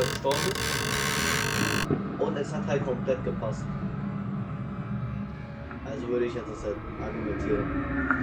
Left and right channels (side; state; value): both; identical; correlation 1.00